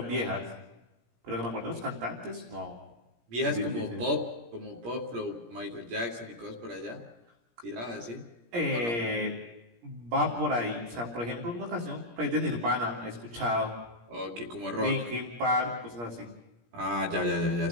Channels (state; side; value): late; left; 17 ms